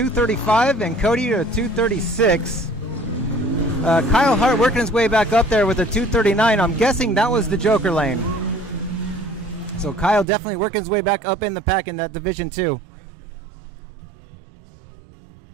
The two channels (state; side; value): drops out; left; at 10.2 s